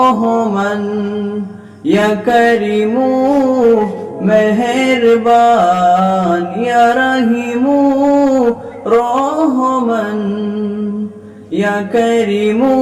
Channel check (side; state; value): both; identical; correlation 1.00